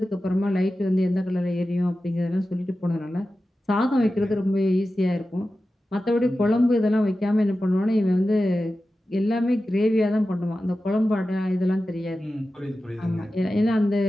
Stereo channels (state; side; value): normal; both; correlation 0.94